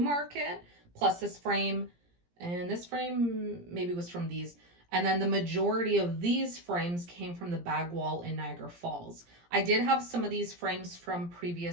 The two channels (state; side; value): late; left; 17 ms